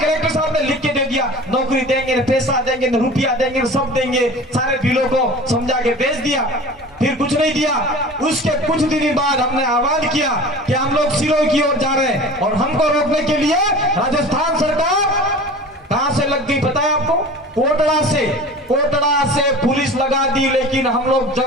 साहब ने लिख के दे दिया, नौकरी देंगे, पैसा देंगे, रुपया देंगे, सब देंगे, सारे बिलों को समझा के भेज दिया। फिर कुछ नहीं दिया। उसके कुछ दिन बाद हमने आह्वान किया कि हम लोग सिरोही की ओर जा रहे हैं, और हमको रोकने के लिए राजस्थान सरकार कहां से लग गई पता है आपको? कोटड़ा से पुलिस लगा दी। लेकिन हम लोग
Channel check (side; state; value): both; normal; correlation 0.39